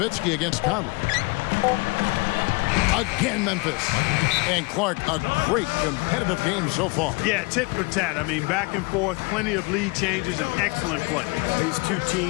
against Conley. Again, Memphis. And Clark, a great competitive game so far. Yeah, tit for tat. I mean, back and forth, plenty of lead changes, and excellent play. These two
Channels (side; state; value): right; quieter; 28.0 dB